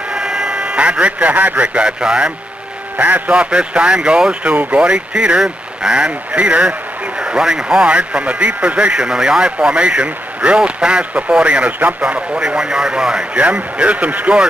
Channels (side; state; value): both; normal; correlation 0.82